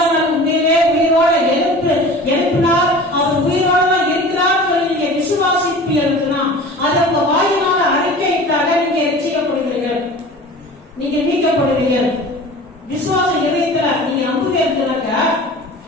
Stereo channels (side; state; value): both; normal; correlation 0.40